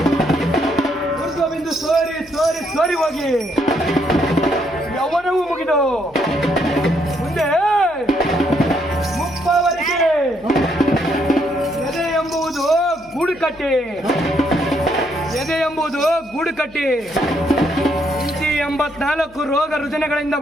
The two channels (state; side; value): noise; left; hum, 26 dB below the sound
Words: ಊರ್ಧ್ವಬಿಂದು ಸೋರಿ ಹೋಗಿ ಯೌವನವೂ ಮುಗಿದು ಮುಂದೆ ಮುಪ್ಪವರೆಗೆ ಎದೆ ಎಂಬುದು ಗೂಡು ಕಟ್ಟಿ 84 ರೋಗ ರುಜಿನಗಳಿಂದ